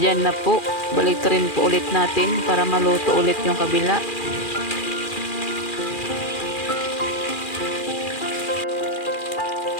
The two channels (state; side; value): late; right; 2.4 ms